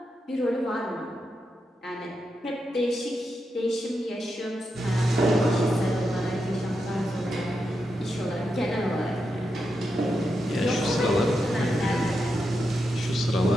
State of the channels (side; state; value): both; normal; correlation 0.86